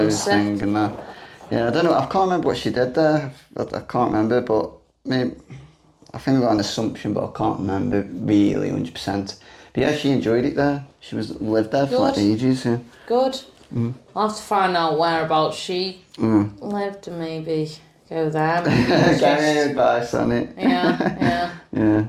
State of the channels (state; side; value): identical; both; correlation 1.00